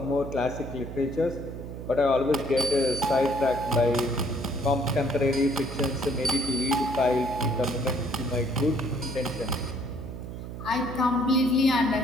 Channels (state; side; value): noise; right; hum, 9 dB below the sound